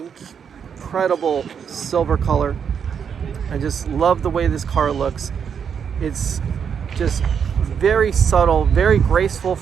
incredible silver color. I just love the way this car looks. It's just very subtle, very graceful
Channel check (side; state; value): left; quieter; 7.3 dB